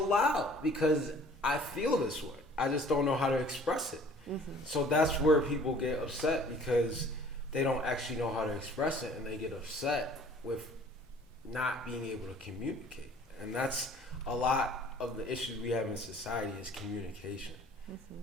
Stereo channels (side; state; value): both; normal; correlation 0.52